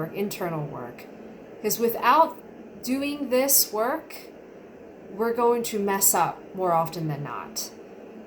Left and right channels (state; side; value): identical; both; correlation 1.00